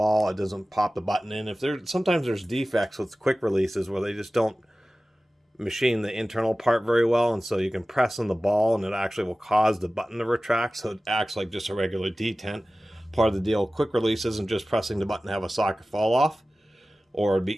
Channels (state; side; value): normal; both; correlation 0.96